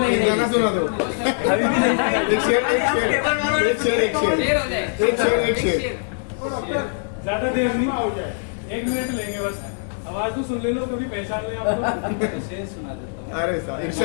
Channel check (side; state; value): right; silent; 64 dB below the other